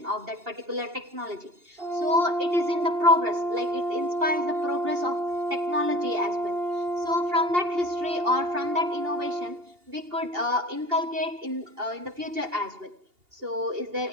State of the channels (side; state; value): left; late; 2.8 ms